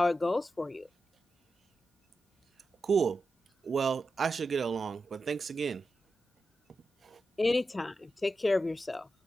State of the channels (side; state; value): both; normal; correlation 0.90